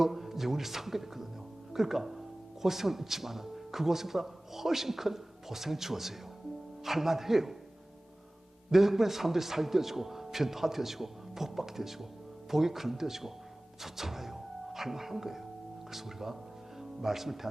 영원히 상급했거든요. 그러니까 고생은 있지만 그 고생보다 훨씬 큰 보상이 주어져요. 할만해요. 내 덕분에 사람들이 살게 되어지고 변화되어지고 복받게 되어지고 복이 그런되어지고 좋잖아요. 할만한 거예요. 그래서 우리가 말씀을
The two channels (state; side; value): normal; both; correlation 0.98